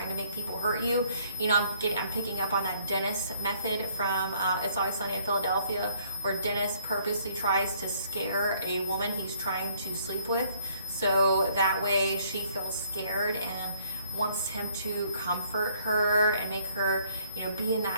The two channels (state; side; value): inverted; both; correlation -0.63